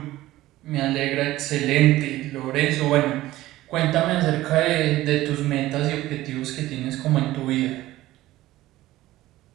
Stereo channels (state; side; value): quieter; left; 16.2 dB